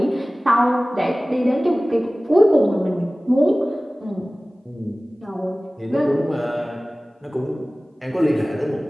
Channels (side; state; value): both; normal; correlation 0.98